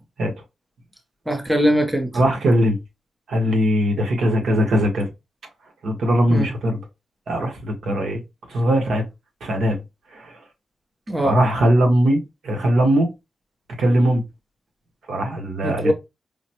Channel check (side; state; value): both; normal; correlation 0.85